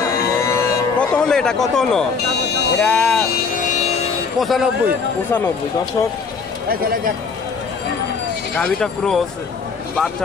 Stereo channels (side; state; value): right; quieter; 5.3 dB